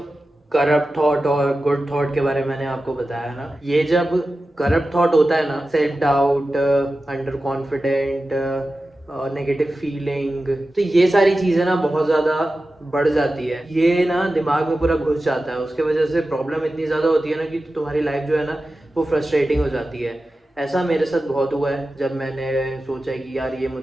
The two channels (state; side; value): normal; both; correlation 0.94